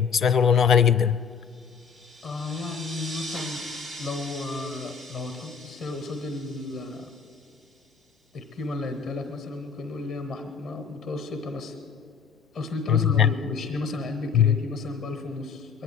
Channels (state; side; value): quieter; right; 6.2 dB